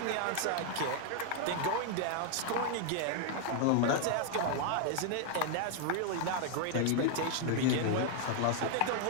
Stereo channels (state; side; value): different; both; correlation 0.00